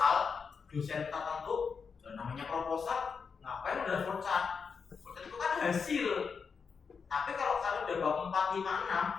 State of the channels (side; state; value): right; quieter; 5.7 dB